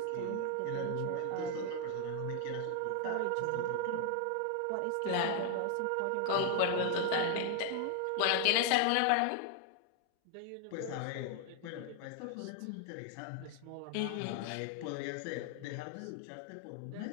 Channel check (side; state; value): both; different; correlation 0.00